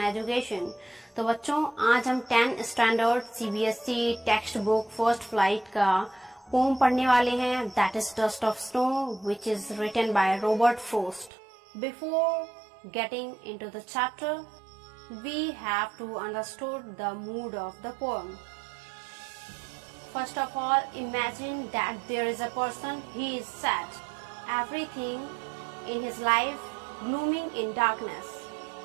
Education. तो बच्चों आज हम 10th standard CBSE text book first flight का poem पढ़ने वाले हैं. That is dust of snow which is written by Robert Frost. Before getting into the chapter we have to understood the mood of the poem. First of all, imagine that there is a person, he is sad. Everything in his life glooming in darkness.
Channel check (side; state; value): left; drops out; at 11.3 s